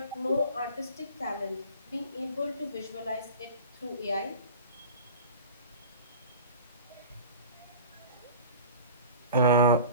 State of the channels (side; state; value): both; inverted; correlation -0.40